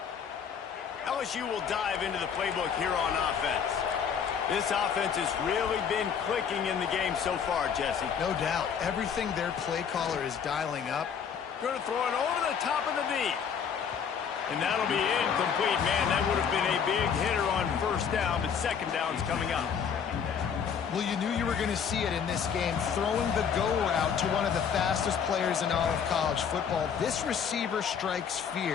LSU will dive into the playbook here on offense. This offense has really been clicking in the game so far, Jesse. No doubt. Everything their play caller is dialing up. Going to throw it over the top of the deep. And that'll be incomplete. Man, that would have been a big hitter on 1st down, but 2nd down's coming up. Well, you knew you were going to see it in this game, throwing the go route to one of the fastest players in all of college football. This receiver strikes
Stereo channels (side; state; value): right; quieter; 7.2 dB